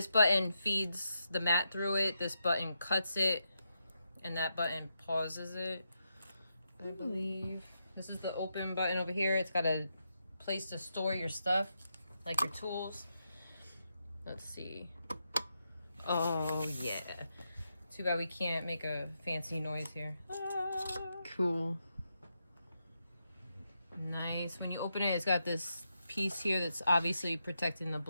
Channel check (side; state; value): both; inverted; correlation -0.84